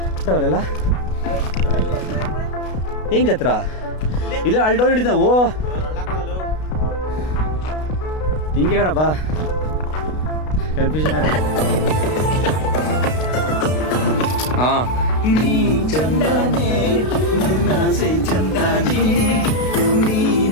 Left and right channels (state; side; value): late; right; 32 ms